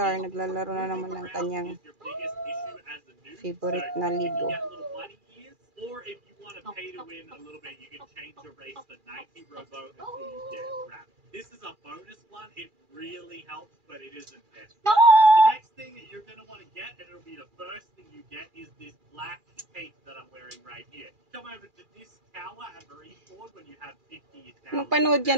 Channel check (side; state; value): left; late; 2.4 ms